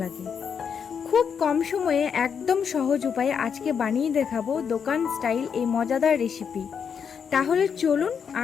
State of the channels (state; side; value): quieter; right; 6.9 dB